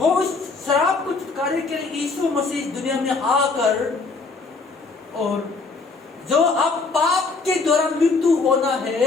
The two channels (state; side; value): quieter; right; 4.1 dB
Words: उस शराब को छुटकारे के लिए यीशु मसीह दुनिया में आकर, और जो अब पाप के द्वारा मृत्यु होना